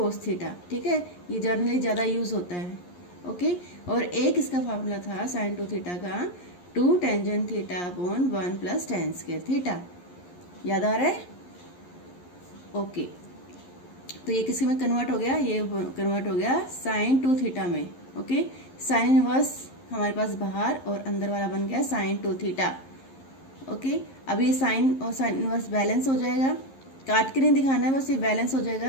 थीटा। ठीक है, ये जनरली ज़्यादा यूज होता है। ओके, और एक इसका फार्मूला था साइन 2 थीटा का 2 tangent theta upon 1 plus tan square theta. याद आ रहा है? ओके, तो ये किसी में कन्वर्ट हो गया, ये कन्वर्ट हो गया साइन 2 थीटा में। ओके, साइन इनवर्स हमारे पास बाहर और अंदर वाला बन गया साइन 2 थीटा। ओके, अब ये साइन और साइन इनवर्स बैलेंस हो जाएगा, काट के नहीं दिखाना है, बस ये बैलेंस हो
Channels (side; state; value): right; late; 11 ms